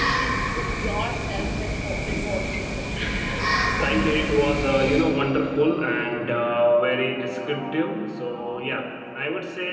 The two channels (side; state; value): both; identical; correlation 1.00